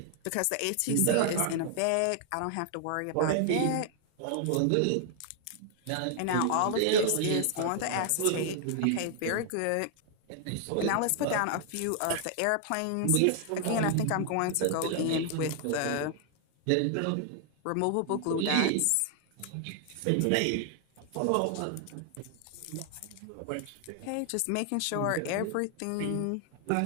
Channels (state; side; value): different; both; correlation 0.00